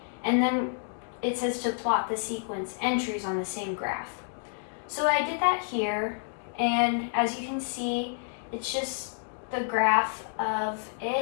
and then it says to plot the sequence entries on the same graph. So I did that here, and as you can see, it's just the graph of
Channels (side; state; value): right; silent; digital silence